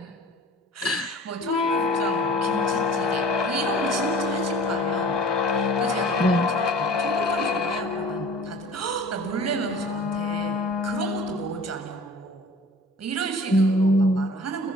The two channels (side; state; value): both; normal; correlation 0.44